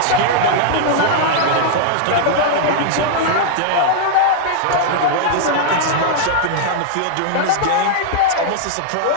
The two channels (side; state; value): both; different; correlation -0.01